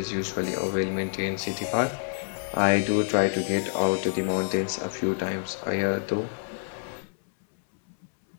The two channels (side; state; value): right; silent; 60 dB below the other